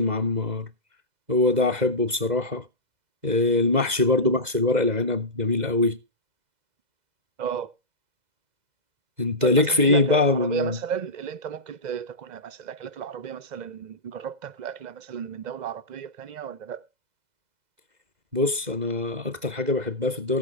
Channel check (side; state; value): left; late; 2.0 ms